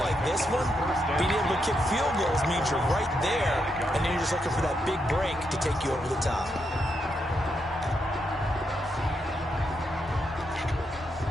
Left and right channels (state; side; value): normal; both; correlation 0.81